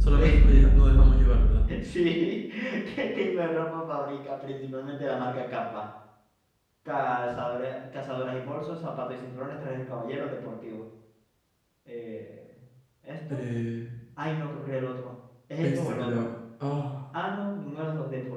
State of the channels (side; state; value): both; identical; correlation 1.00